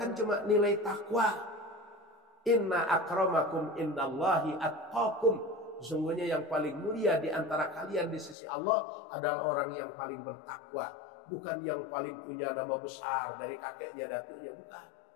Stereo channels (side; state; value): right; drops out; at 8.3 s